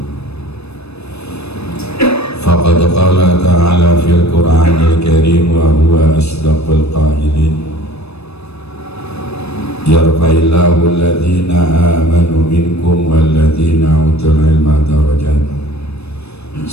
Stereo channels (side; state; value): right; late; 0.79 ms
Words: Faqad qala ta'ala fil Qur'anil Karim wa huwa asdaqul qailin, yarfa'illahu alladhina amanu minkum walladhina utul ilma darajat.